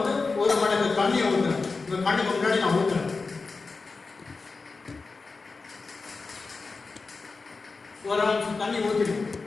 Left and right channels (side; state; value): right; quieter; 4.1 dB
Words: ஒரு மடங்கு தண்ணியை ஊற்றுறேன். இந்த கண்ணுக்கு முன்னாடி நான் ஊற்றுறேன். ஒரு நிமிஷம் தண்ணி ஊற்றிடும்.